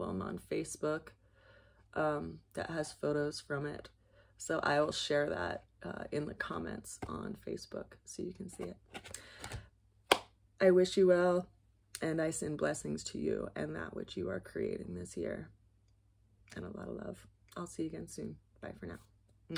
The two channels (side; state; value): both; identical; correlation 1.00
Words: on Facebook that has photos from it. So I will share that in the comments on Facebook so you can see it. I wish you well, and I send blessings to you and that which you are creating this year. And a lot of love. I'll see you again soon. Bye for now.